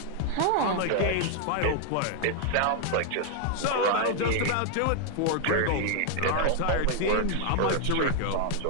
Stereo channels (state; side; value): different; both; correlation 0.00